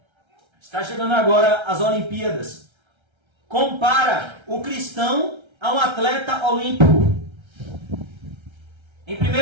está chegando agora às Olimpíadas, compara o cristão a um atleta olímpico? Em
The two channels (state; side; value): late; left; 1.3 ms